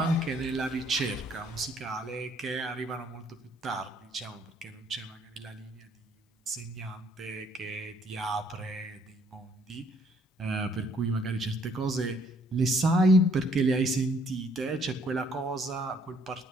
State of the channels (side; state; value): both; normal; correlation 0.64